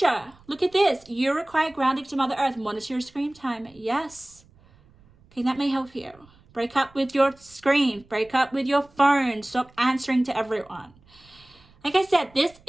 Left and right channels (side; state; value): right; noise; rumble, 29 dB below the sound